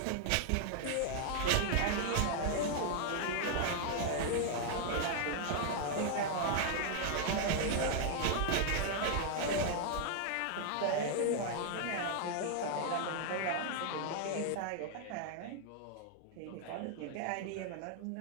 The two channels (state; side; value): different; both; correlation 0.00